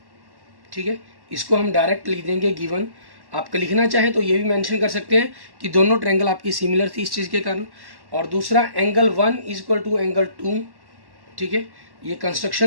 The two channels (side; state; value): left; late; 1.1 ms